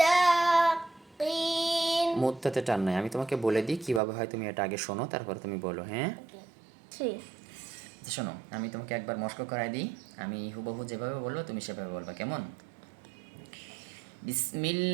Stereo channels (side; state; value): left; drops out; at 4.0 s